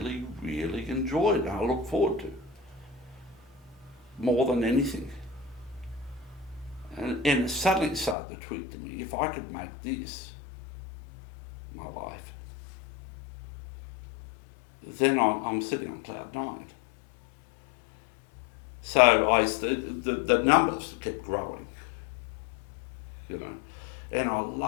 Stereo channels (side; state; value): right; drops out; at 8.2 s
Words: really enjoyed and I look forward to. More than anything. And it suddenly started to tweet to me, if I could make this my life, then I'm sitting on cloud 9. So the numbers kept growing, and I